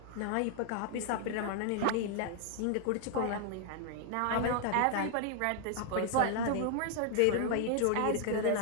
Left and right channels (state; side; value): different; both; correlation 0.00